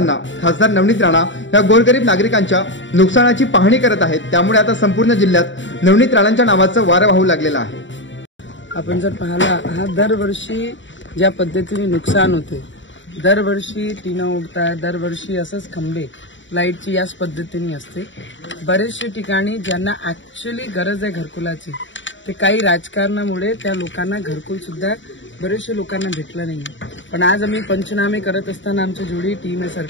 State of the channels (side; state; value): right; late; 0.54 ms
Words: खासदार नवनीत राणा या गोरगरीब नागरिकांच्या नुकसानाची पाहणी करत आहेत, त्यामुळे आता संपूर्ण जिल्ह्यात नवनीत राणांच्या नावाचं वारं वाहू लागलेलं आहे। आपण जर पाहिला हा दरवर्षी ज्या पद्धतीने नुकसान होते, दरवर्षी टीना उडतात, दरवर्षी असंच खंबे लाईटची याच पद्धतीने असते। बरेचशे ठिकाणी ज्यांना ऍक्च्युअली गरज आहे घरकुलाची, ते काही राजकारणामुळे त्या लोकांना घरकुल सुद्धा बरेचशे लोकांना भेटलं नाही। पण आज आम्ही पंचनामे करत असताना आमची जोडी टीम आहे